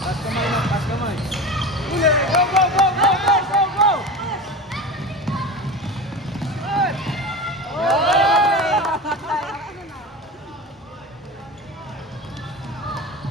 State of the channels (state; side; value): normal; both; correlation 0.28